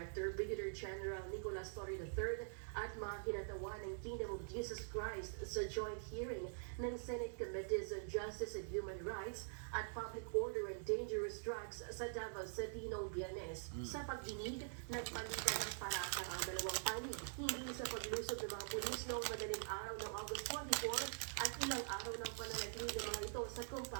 Brigadier General Nicolas Torre III at mga kinatawan ng Kingdom of Jesus Christ sa joint hearing ng Senate Committees on Justice and Human Rights at Public Order and Dangerous Drugs sa Davao City noong Biyernes. Sa pagdinig, nagpalitan ng paratang ang dalawang panig, hindi sa paglusog ng mga pulis noong madaling araw ng August 24 at ilang araw ng pananatili ng mga ito sa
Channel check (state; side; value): silent; left; digital silence